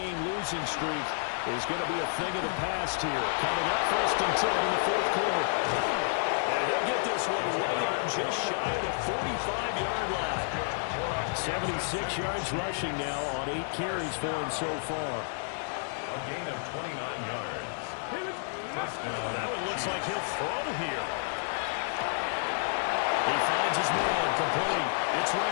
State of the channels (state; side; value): silent; right; digital silence